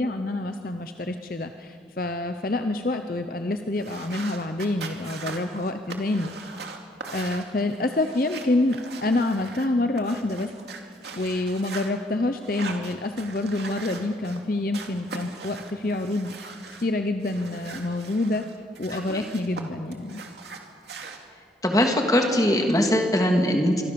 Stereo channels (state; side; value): normal; both; correlation 0.67